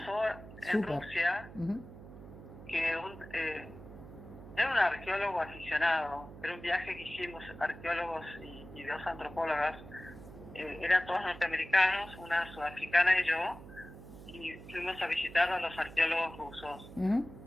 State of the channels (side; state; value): right; noise; hum, 16 dB below the sound